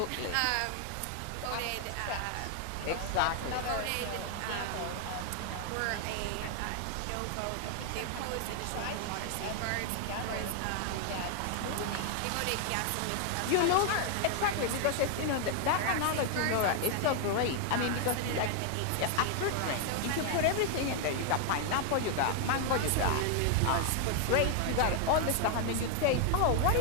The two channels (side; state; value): both; different; correlation 0.00